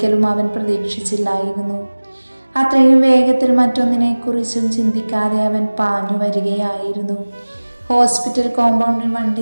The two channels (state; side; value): inverted; both; correlation -1.00